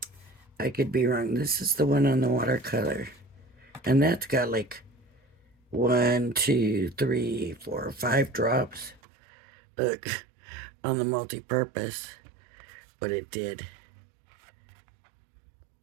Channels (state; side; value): drops out; left; at 9.0 s